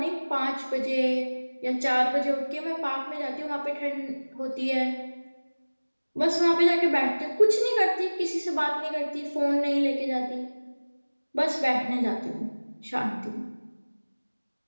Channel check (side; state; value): both; inverted; correlation -1.00